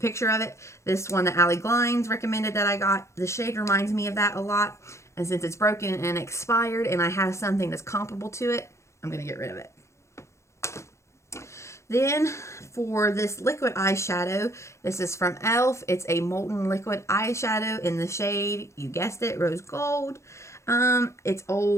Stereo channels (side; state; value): right; late; 0.14 ms